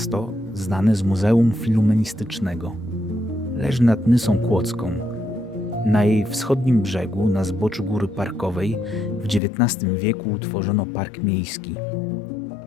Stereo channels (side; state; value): right; drops out; at 9.4 s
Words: znane z Muzeum Filumenistycznego. Leży nad Nysą Kłodzką. Na jej wschodnim brzegu, na zboczu góry parkowej, w XIX wieku utworzono park miejski.